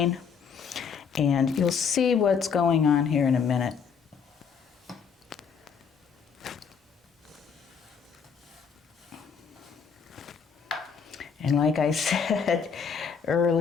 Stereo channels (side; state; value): right; quieter; 6.4 dB